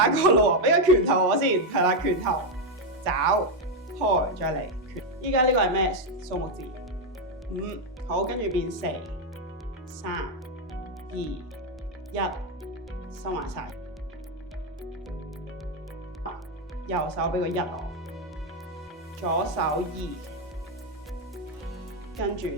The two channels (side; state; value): both; normal; correlation 0.04